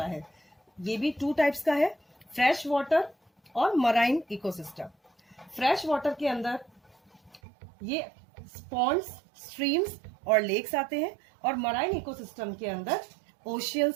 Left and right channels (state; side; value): drops out; left; at 7.4 s